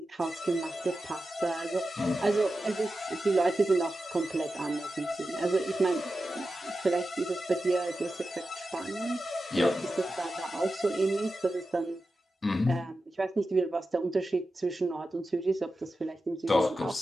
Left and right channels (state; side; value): normal; both; correlation 0.92